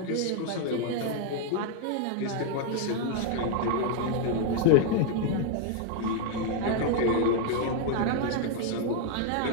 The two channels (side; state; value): both; different; correlation 0.00